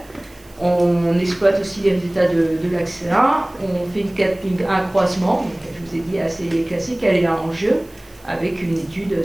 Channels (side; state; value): right; noise; hiss, 29 dB below the sound